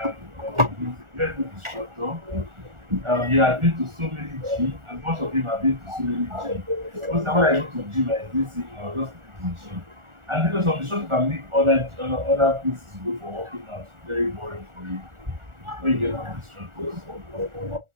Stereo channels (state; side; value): late; left; 1.4 ms